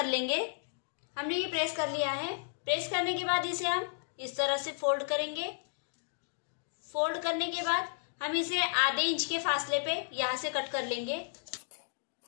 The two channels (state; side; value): silent; right; digital silence